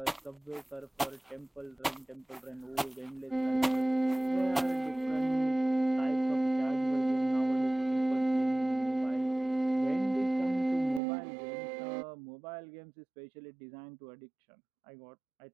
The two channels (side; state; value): left; drops out; at 11.0 s